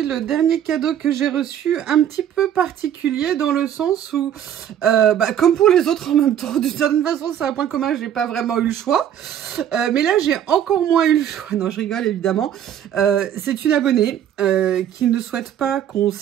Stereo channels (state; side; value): quieter; left; 10.0 dB